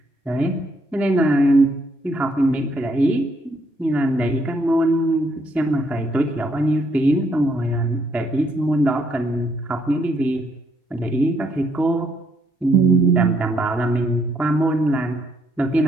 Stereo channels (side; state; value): both; normal; correlation 0.72